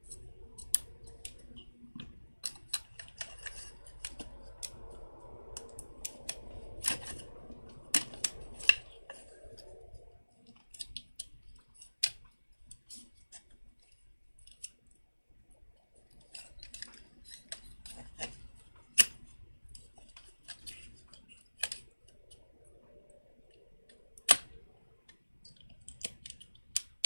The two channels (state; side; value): inverted; both; correlation -1.00